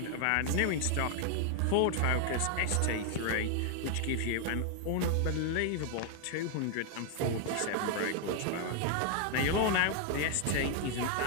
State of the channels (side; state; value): both; different; correlation 0.00